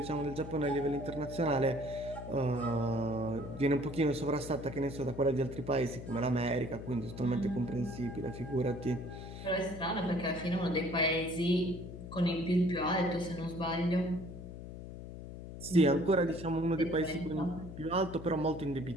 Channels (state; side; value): noise; left; hum, 11 dB below the sound